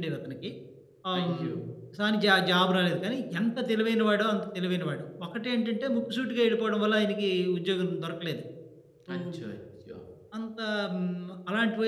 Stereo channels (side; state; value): both; identical; correlation 1.00